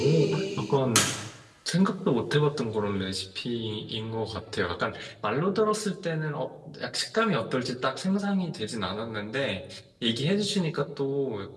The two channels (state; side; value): identical; both; correlation 1.00